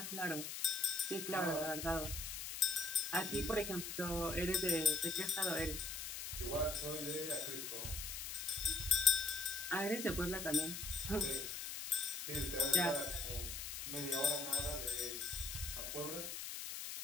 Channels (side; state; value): left; noise; hiss, 5 dB below the sound